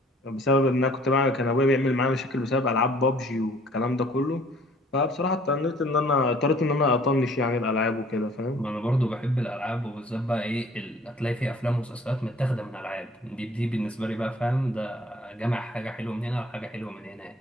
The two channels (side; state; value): both; normal; correlation 0.55